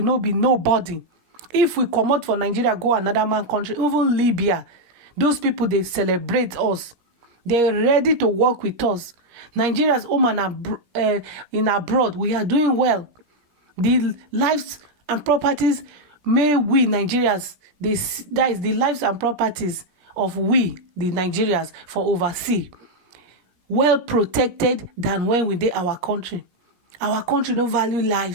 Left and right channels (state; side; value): late; left; 17 ms